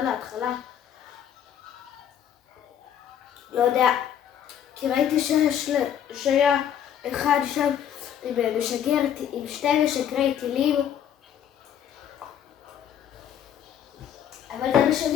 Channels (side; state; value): right; quieter; 9.6 dB